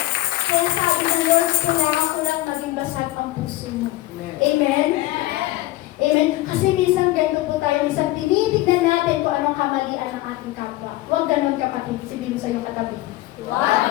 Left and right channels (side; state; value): right; quieter; 17.5 dB